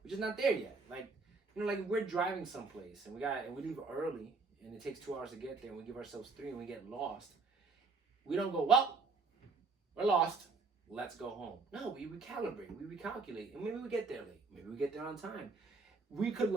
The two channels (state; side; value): quieter; left; 4.2 dB